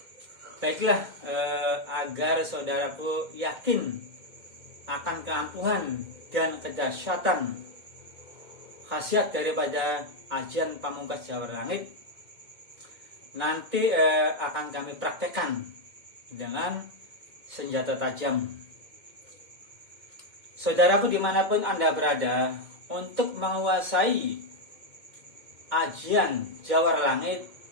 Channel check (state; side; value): late; left; 2.1 ms